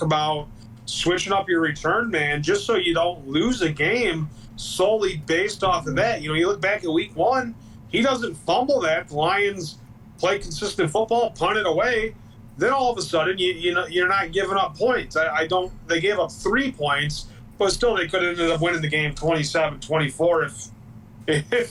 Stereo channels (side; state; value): both; identical; correlation 1.00